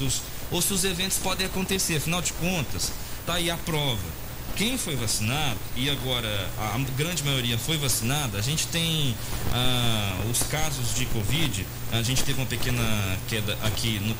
ou se os eventos podem acontecer, afinal de contas, tá aí a prova. Quem foi vacinado, e agora a grande maioria foi vacinada, a gente tem os casos de Covid, a gente teve uma pequena queda aqui no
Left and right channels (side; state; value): both; identical; correlation 1.00